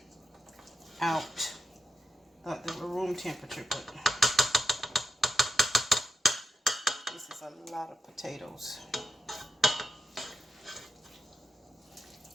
out. Thought they were room temperature, but this is a lot of potatoes.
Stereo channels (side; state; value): both; normal; correlation 0.86